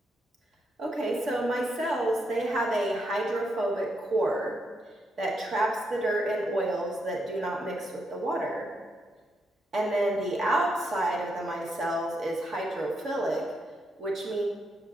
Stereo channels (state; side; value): normal; both; correlation 0.80